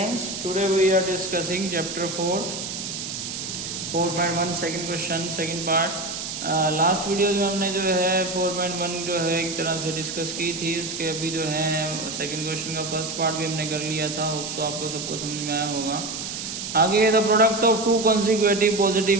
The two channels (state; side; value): noise; right; hiss, 6 dB below the sound